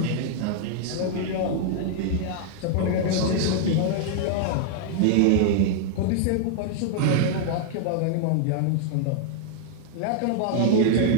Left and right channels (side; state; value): both; different; correlation 0.00